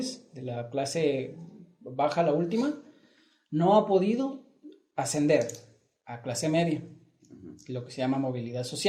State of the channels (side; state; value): both; identical; correlation 1.00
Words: de la clase baja, la última, no ha podido ascender a clase media, lo que se llama movilidad